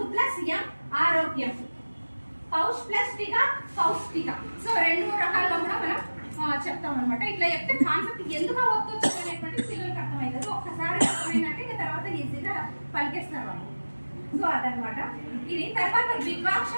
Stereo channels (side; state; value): both; inverted; correlation -1.00